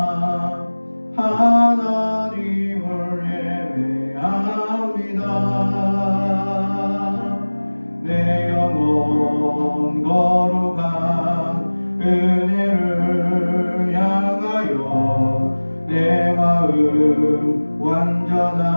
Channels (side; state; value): both; inverted; correlation -1.00